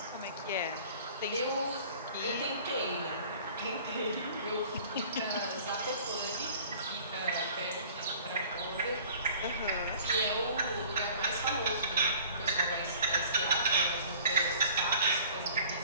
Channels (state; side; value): inverted; both; correlation -0.49